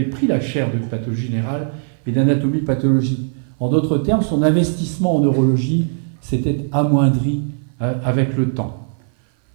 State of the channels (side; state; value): left; silent; 57 dB below the other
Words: pris la chaire de pathologie générale et d'anatomie pathologique. En d'autres termes, son investissement en neurologie s'était amoindri avec le temps.